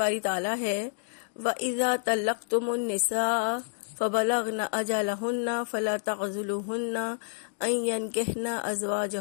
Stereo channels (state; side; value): silent; right; digital silence